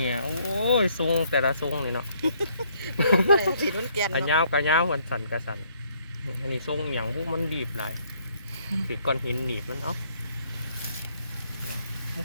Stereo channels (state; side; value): inverted; both; correlation -0.67